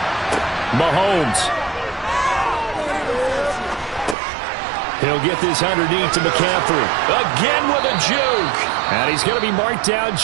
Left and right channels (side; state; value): left; drops out; at 4.2 s